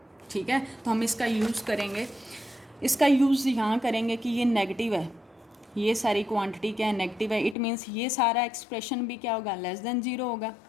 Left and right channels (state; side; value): drops out; right; at 7.6 s